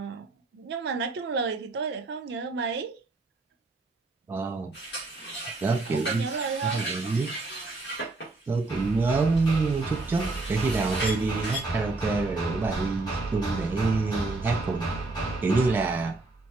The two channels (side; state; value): left; quieter; 3.3 dB